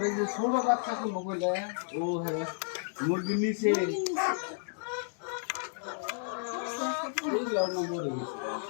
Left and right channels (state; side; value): silent; right; digital silence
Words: এই যে ছোট বাচ্চা গুলো বলে ও হ্যাঁ মুরগির নিচে এইগুলো না মরে গেছে।